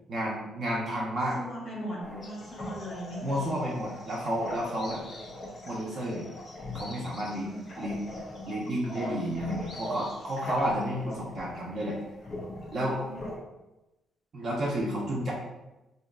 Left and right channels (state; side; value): normal; both; correlation 0.73